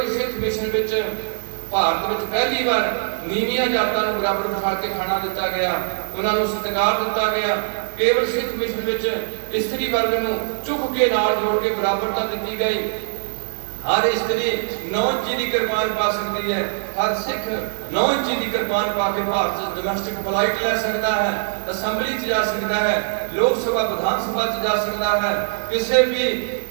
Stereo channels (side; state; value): left; silent; digital silence